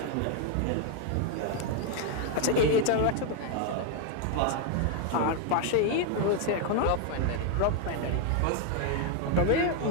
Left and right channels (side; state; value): both; different; correlation 0.00